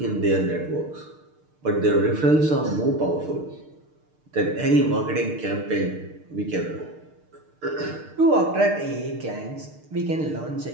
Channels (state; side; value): late; left; 6.6 ms